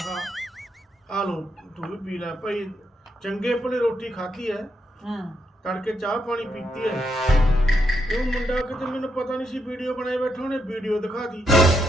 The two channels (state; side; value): normal; both; correlation 0.80